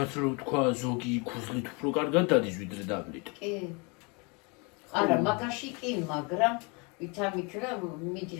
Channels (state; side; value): quieter; right; 31.0 dB